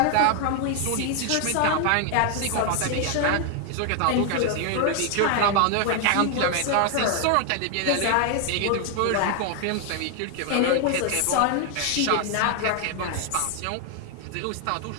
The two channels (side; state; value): both; different; correlation 0.00